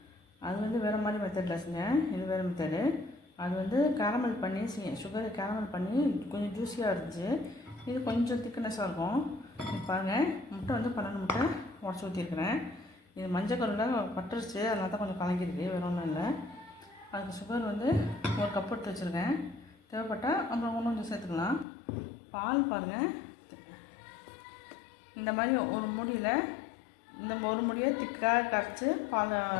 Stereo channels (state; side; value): drops out; right; at 21.7 s